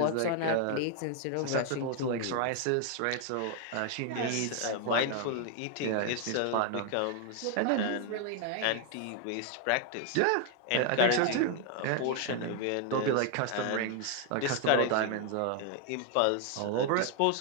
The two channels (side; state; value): both; different; correlation 0.00